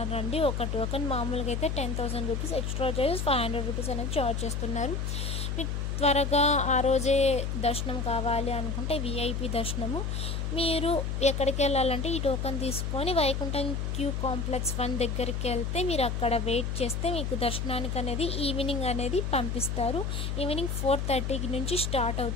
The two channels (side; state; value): left; noise; hum, 2 dB below the sound